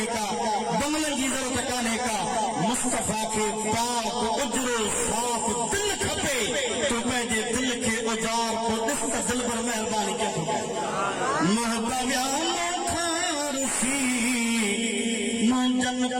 का बंगलन की जरूरत काने का मुस्तफा के पाक उजरो साफ दिल खपे तो पंहिंजे दिल के उजार को ॾिस त दिल पर मेहरबानी कयो महबूबा मुंहिंजनि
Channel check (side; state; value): both; identical; correlation 1.00